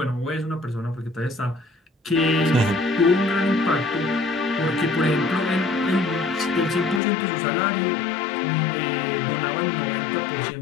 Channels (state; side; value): drops out; right; at 7.0 s